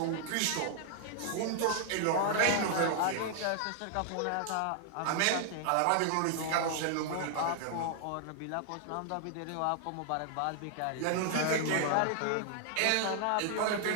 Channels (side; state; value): both; different; correlation 0.00